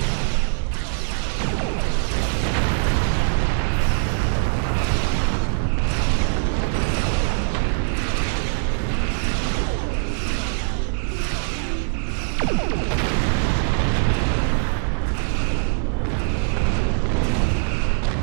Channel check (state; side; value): silent; left; 64 dB below the other